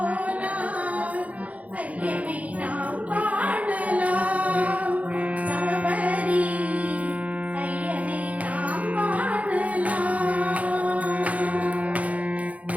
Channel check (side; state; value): left; late; 0.069 ms